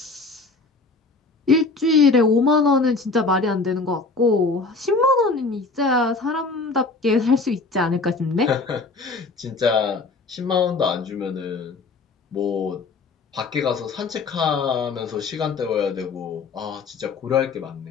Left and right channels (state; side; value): quieter; right; 3.9 dB